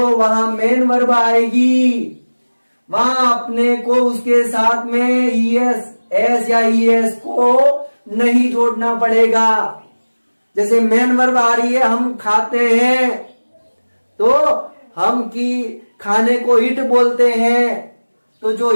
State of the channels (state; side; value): inverted; both; correlation -1.00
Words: वहां मेन वर्ब आएगी वहां अपने को उसके साथ में ईएस एस या ईएस को नहीं जोड़ना पड़ेगा। जैसे मेन वर्ब आ रही है हम खाते हैं तो हम की खाने को ईट बोलते हैं, तो जो